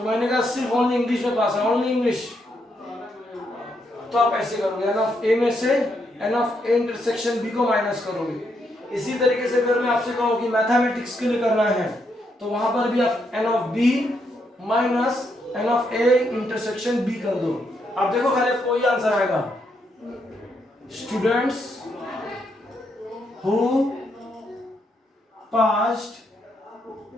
मैंने कहा सिर्फ ओनली इंग्लिश में पास है, ओनली इंग्लिश। तो आप ऐसे करोगे, एन ऑफ ए में से n of A intersection B को माइनस करोगे। इसी तरीके से अगर मैं आपसे कहूं कि मैथमेटिक्स के लिए करना है, तो वहां पर भी आप n of B minus n of A intersection B कर दो। आप देखो खाली कोई आंसर आएगा। Students who passed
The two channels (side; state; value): both; normal; correlation 0.78